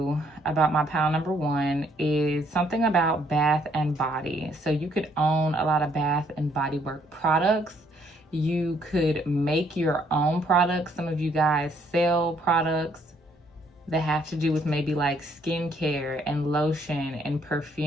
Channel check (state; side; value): normal; both; correlation 0.67